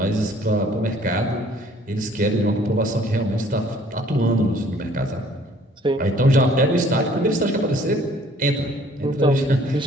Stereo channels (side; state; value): both; normal; correlation 0.58